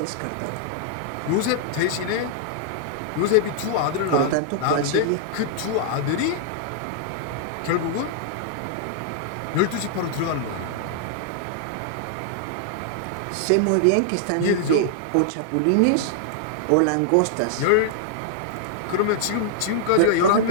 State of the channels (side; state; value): both; different; correlation -0.01